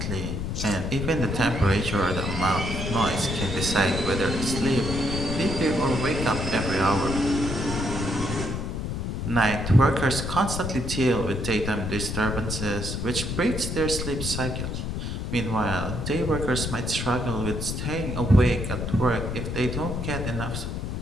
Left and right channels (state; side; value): noise; left; rumble, 3 dB below the sound